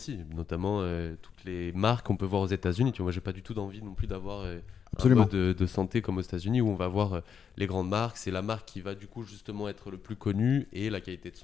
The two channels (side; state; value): right; quieter; 7.2 dB